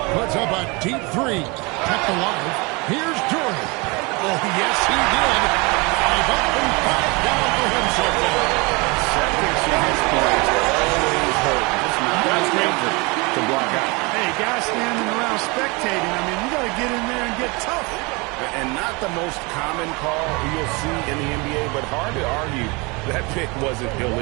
Puts up a deep 3. Kept alive. Here's Jordan. Oh, yes, he did. 5 up and 5 down for him so far. Seconds in his points always hurt. Just not danger to block out. Hey, guys standing around spectating. I mean, you got to get in there and get tough. And not the most common call you'll see in the NBA, but hard to argue that pick wasn't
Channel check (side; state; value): left; quieter; 27.5 dB